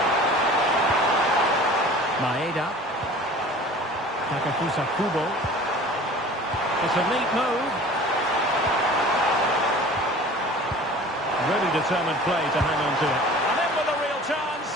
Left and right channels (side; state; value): both; normal; correlation 0.43